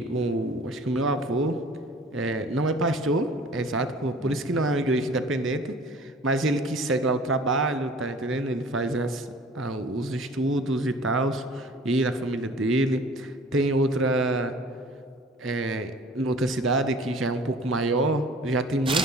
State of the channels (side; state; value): both; normal; correlation 0.47